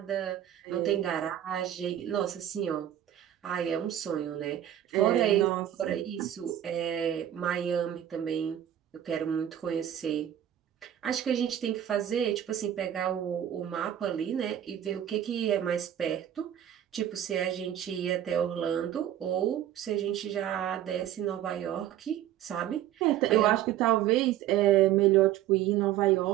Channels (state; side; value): quieter; left; 11.4 dB